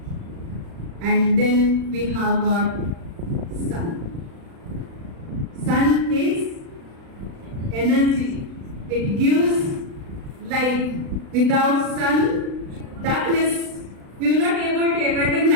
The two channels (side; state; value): left; late; 36 ms